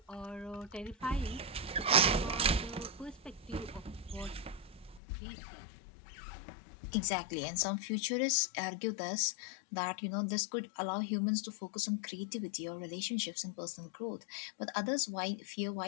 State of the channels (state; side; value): drops out; right; at 5.0 s